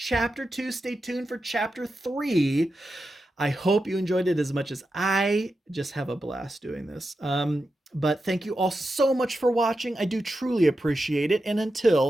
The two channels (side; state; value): both; normal; correlation 0.89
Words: 2. Stay tuned for chapter 3. I hope you enjoyed it as much as I just have a blast doing this. But thank you all so much for watching. I do truly appreciate it, and